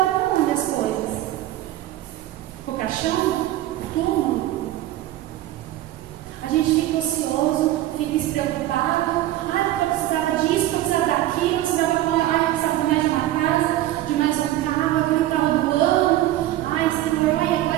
para onde as coisas? O caixão? O túmulo? A gente fica ocioso, fica despreocupado. Porque eu precisava disso, eu precisava daquilo, eu precisava de mais de uma casa, de mais um carro, aquele carro do ano. Senhor,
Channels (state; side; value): quieter; left; 14.4 dB